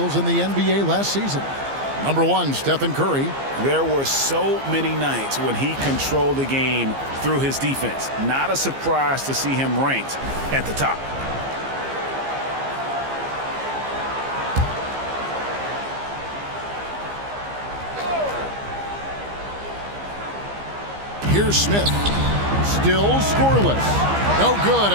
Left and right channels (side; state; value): left; late; 15 ms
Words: in the NBA last season. Number 1, Stephen Curry. There were so many nights when he controlled the game through his defense. Not a surprise to see him ranked at the top. Here's Smith. Still scoreless. No good